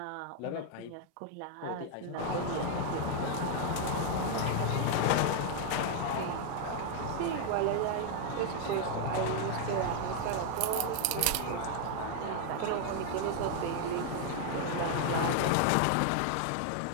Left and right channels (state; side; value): different; both; correlation 0.00